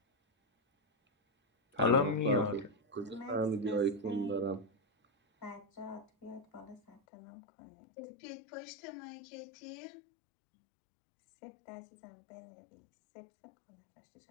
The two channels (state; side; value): drops out; right; at 7.0 s